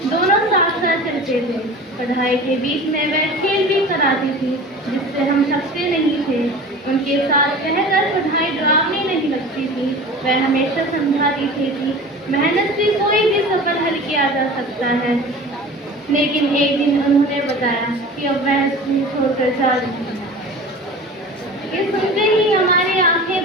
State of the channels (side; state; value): both; normal; correlation 0.37